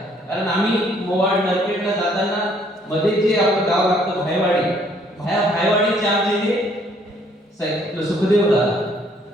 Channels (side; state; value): both; normal; correlation 0.64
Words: कारण आम्ही मोवाड नरपेटला जाताना मध्ये जे आपलं गाव लागतं भायवाडीचे आमचे हे सुखदेव दादा